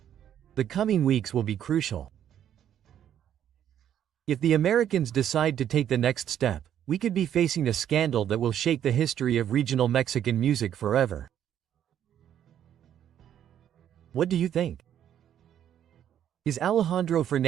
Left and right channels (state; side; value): quieter; left; 10.1 dB